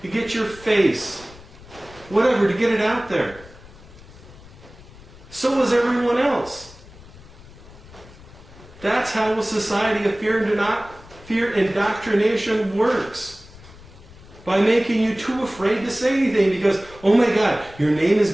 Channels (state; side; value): noise; left; rumble, 20 dB below the sound